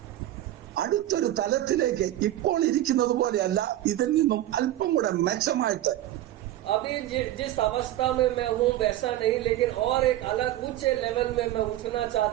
അടുത്തൊരു തലത്തിലേക്ക് ഇപ്പോൾ ഇരിക്കുന്നത് പോലെയല്ല, ഇതിൽ നിന്നും അല്പം കൂടെ മെച്ചമായിട്ട്. अभी जिस अवस्था में मैं हूँ वैसा नहीं, लेकिन और एक अलग ऊंचे लेवल में मैं उठना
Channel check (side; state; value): left; quieter; 14.0 dB